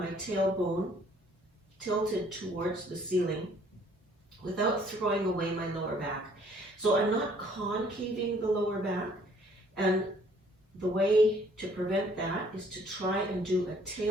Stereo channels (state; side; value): normal; both; correlation 0.60